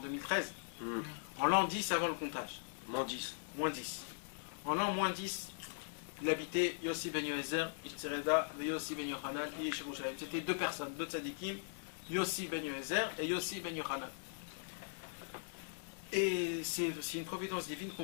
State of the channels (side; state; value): right; silent; digital silence